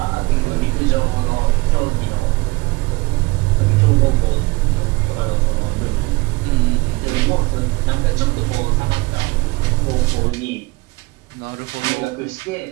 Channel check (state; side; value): quieter; left; 23.7 dB